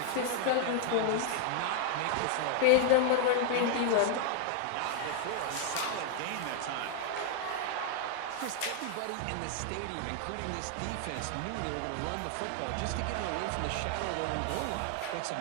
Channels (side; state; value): both; different; correlation 0.00